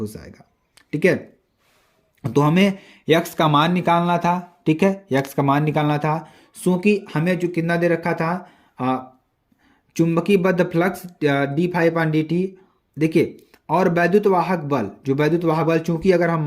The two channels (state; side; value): identical; both; correlation 1.00